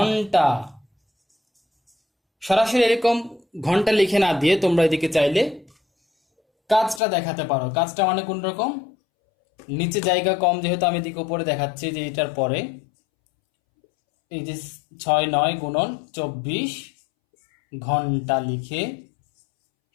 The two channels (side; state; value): right; drops out; at 7.0 s